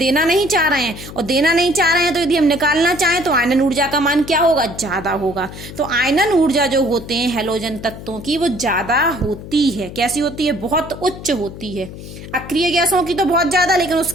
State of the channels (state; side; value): noise; left; hum, 13 dB below the sound